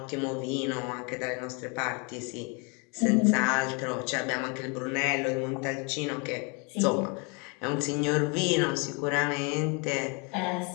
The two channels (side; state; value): right; quieter; 33.1 dB